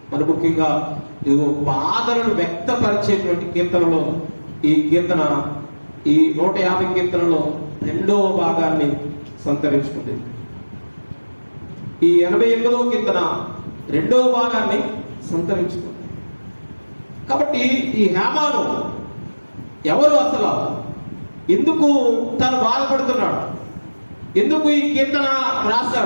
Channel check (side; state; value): both; inverted; correlation -1.00